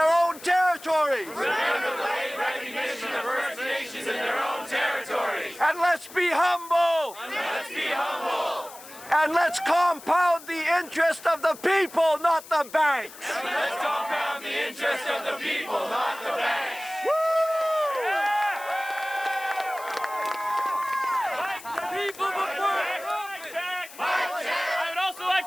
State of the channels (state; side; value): noise; left; hiss, 17 dB below the sound